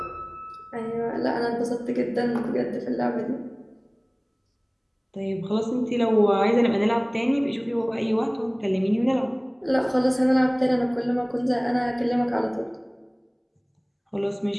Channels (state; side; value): identical; both; correlation 1.00